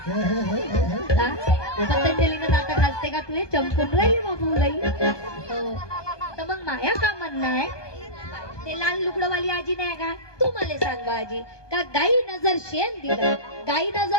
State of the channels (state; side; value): late; right; 1.2 ms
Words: पतंजलीनं नाटक हसते का तुले? चमकून राहिली बापू लई. हो. तर मग माया का म्हणणं आहे, ते लाल लुगडवाली आजी नाही का? तू मला सांग आजी, का गाई नजर शेण दिलं, गाई